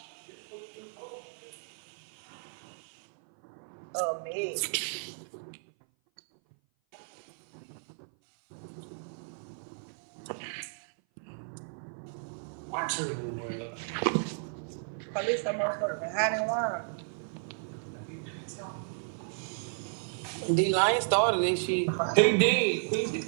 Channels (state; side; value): silent; left; 56 dB below the other